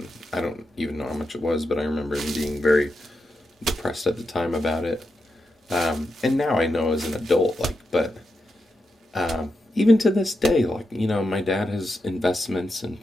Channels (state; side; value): normal; both; correlation 0.87